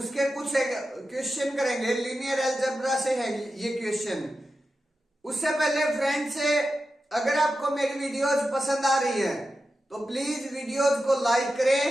कुछ क्वेश्चन करेंगे। लीनियर अलजेब्रा से है ये क्वेश्चन। उससे पहले फ्रेंड्स, अगर आपको मेरी वीडियोज पसंद आ रही है तो प्लीज वीडियोज को लाइक करें,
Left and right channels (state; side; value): normal; both; correlation 0.91